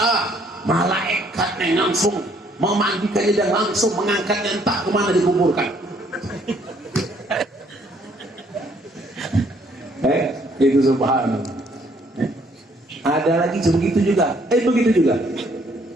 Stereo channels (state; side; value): normal; both; correlation 0.65